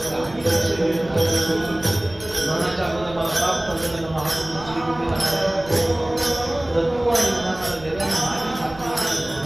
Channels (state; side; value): noise; right; rumble, 18 dB below the sound